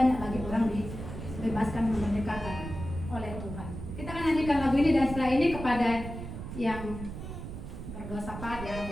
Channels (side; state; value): right; noise; rumble, 9 dB below the sound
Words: lagi orang dibebaskan, memerdekakan oleh Tuhan. Kita akan nyanyikan lagu ini, dan setelah ini kepada yang berdosa pada